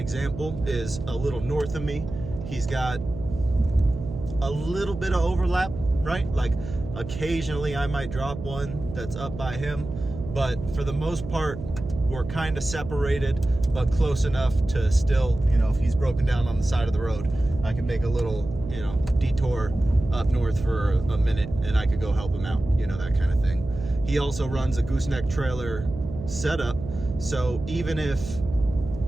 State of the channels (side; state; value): right; noise; hum, 10 dB below the sound